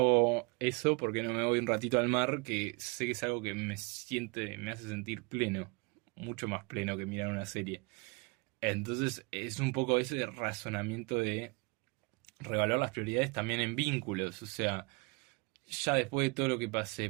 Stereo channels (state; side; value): quieter; left; 29.4 dB